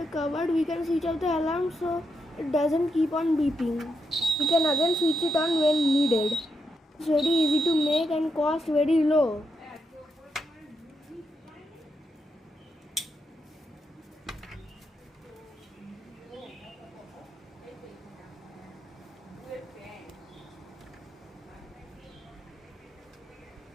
cupboard, we can switch off the alarm so it doesn't keep on beeping. We can again switch it on when needed. It's very easy to make and cost very low.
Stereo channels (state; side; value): normal; both; correlation 0.83